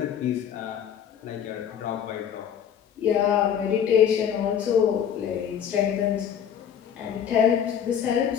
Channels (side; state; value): right; quieter; 8.6 dB